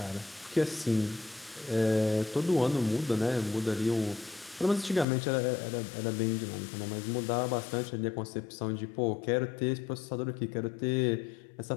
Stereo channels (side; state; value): right; drops out; at 5.1 s